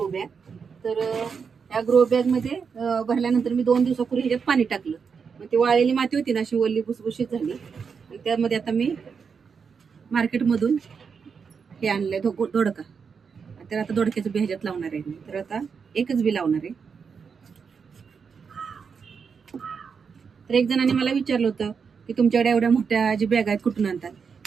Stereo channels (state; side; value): quieter; left; 6.0 dB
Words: बॅग. तर या ग्रो बॅग मध्ये भरल्यानंतर मी 2 दिवसापूर्वी ह्याच्यात पाणी टाकलं. मग ती वाळलेली माती होती ना अशी वल्ली भुसभुशीत झाली. आणि त्यामध्ये आता मी मार्केटमधून हे आणलंय दोडका. तर आता दोडक्याचं बी ह्याच्यात लावणार आहे मी. तर आता एकच बी लावणार आहे. तर एक जणांनी मला विचारलं होतं की तुमच्याकडे एवढ्या मोठ्या जी बॅग आहेत कुठून आणतात.